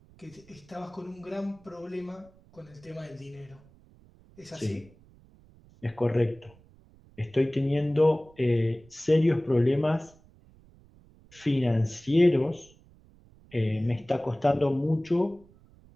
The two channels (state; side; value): noise; right; rumble, 27 dB below the sound